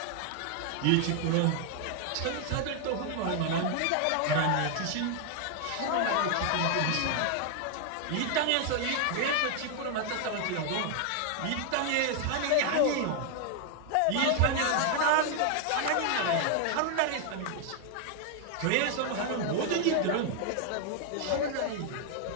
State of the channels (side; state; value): both; different; correlation 0.00